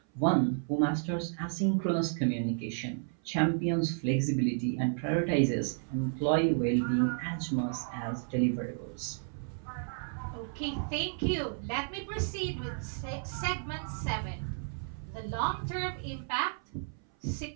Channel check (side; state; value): left; silent; 56 dB below the other